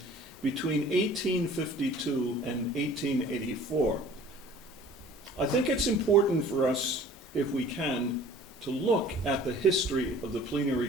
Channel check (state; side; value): normal; both; correlation 0.49